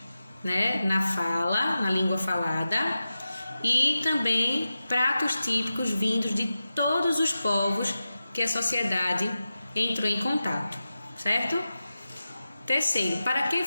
né, na fala, na língua falada, e também pratos típicos vindos de todos os povos que a sociedade entrou em contato, certo? Terceiro, para que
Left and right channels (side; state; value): both; inverted; correlation -0.93